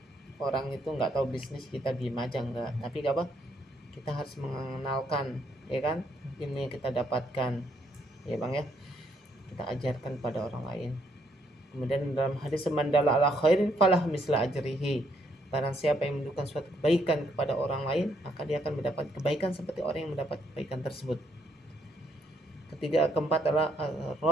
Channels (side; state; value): both; normal; correlation 0.72